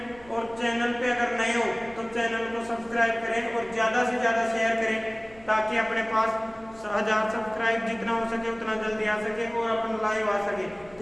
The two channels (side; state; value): right; noise; hum, 24 dB below the sound